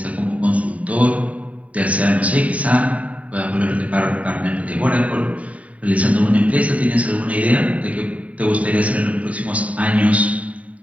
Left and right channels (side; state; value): left; late; 0.068 ms